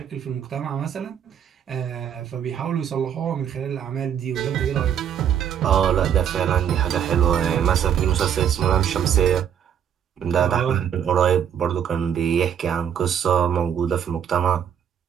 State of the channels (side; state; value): left; quieter; 8.8 dB